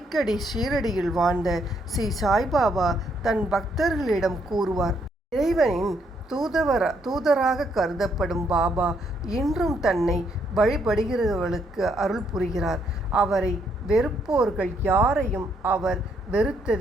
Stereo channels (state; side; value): normal; both; correlation 0.73